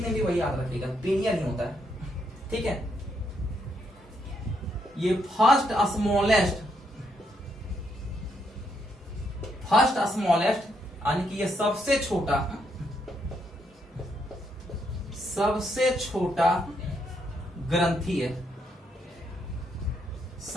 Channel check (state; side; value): normal; both; correlation 0.77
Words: भी वही याद रखिएगा, पीनियल ही होता है। ठीक है, ये फर्स्ट स्मॉलेस्ट यानी कि ये सबसे छोटा ग्रंथि है,